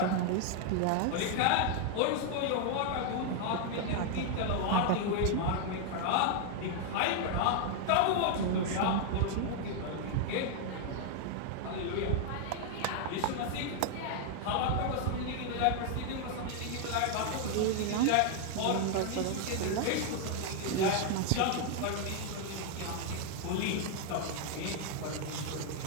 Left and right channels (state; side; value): different; both; correlation 0.00